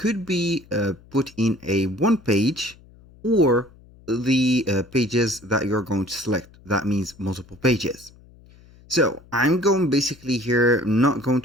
be put in a one page or the pages that you're going to select. That means multiple pages. So I'm going basically here, not going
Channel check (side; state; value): left; noise; hum, 25 dB below the sound